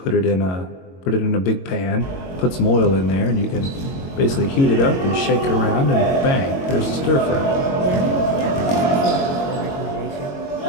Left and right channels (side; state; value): right; late; 22 ms